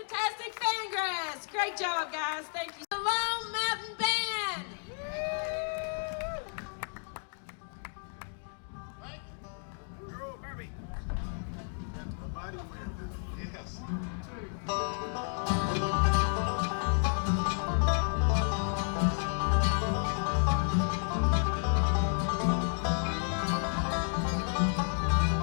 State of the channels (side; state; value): right; silent; 57 dB below the other